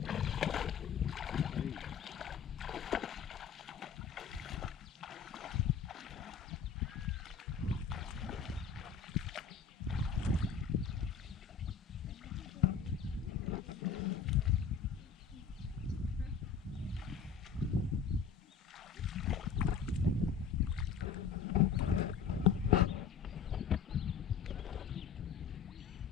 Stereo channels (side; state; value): right; quieter; 6.7 dB